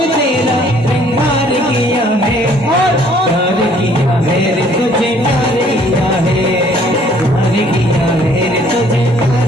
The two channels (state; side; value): normal; both; correlation 0.60